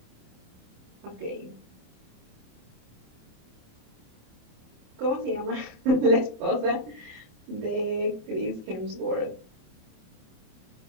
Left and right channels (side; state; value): left; late; 27 ms